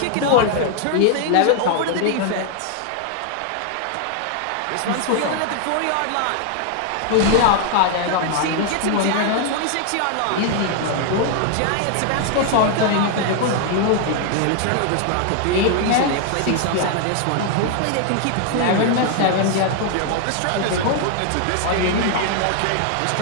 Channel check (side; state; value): both; different; correlation 0.00